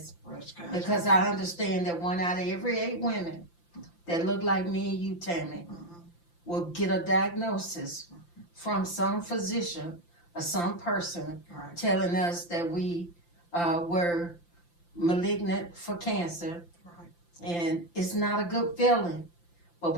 because I understand that 1 out of every 8 women that look like me and you, Tammy, will get a diagnosis from some physician or some person telling us that we were malignant for cancer, and it's not a good feeling, but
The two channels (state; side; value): late; right; 5.8 ms